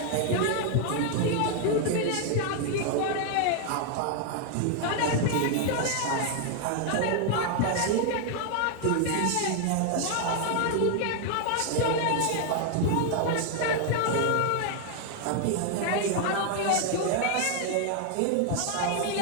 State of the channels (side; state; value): both; different; correlation 0.00